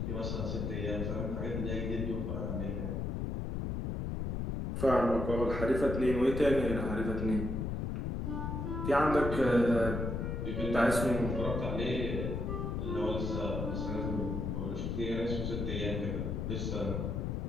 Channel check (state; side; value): noise; left; rumble, 2 dB below the sound